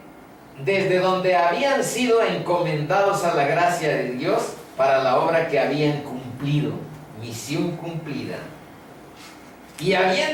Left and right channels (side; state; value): both; identical; correlation 1.00